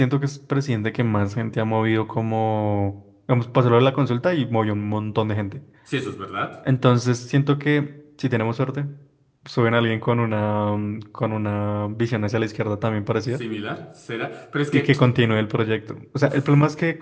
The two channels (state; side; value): identical; both; correlation 1.00